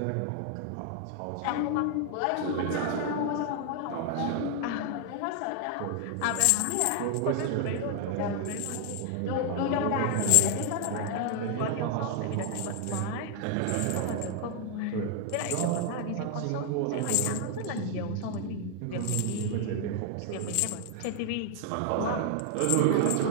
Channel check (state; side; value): different; both; correlation 0.00